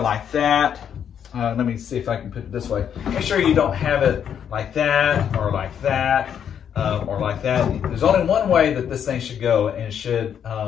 like that. Let me see if I can put it this way. Make sure you don't have it like that or like that or like that. There's only one way that this thing should go, and it should,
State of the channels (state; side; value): quieter; right; 8.5 dB